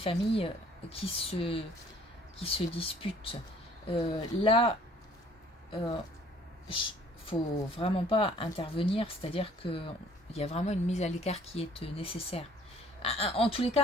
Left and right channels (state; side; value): normal; both; correlation 0.56